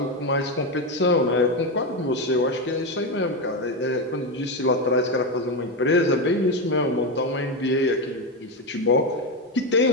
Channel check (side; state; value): both; normal; correlation 0.12